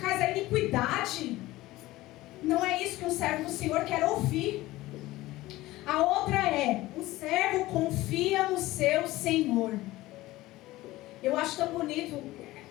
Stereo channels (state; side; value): quieter; right; 17.8 dB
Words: a iniquidade. Não é isso que um servo do Senhor quer ouvir. A outra é, o servo confia no seu Senhor. Eu acho tão bonito